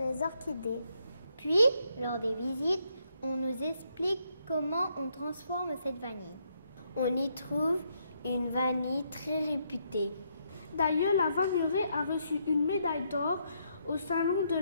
orchidées. Puis, lors des visites, on nous explique comment on transforme cette vanille. On y trouve une vanille très réputée. D'ailleurs, la vanillerie a reçu une médaille d'or au Salon de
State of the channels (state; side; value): inverted; both; correlation -0.76